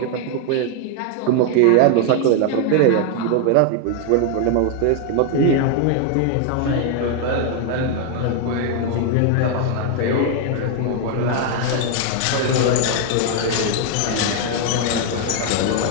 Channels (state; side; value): different; both; correlation 0.00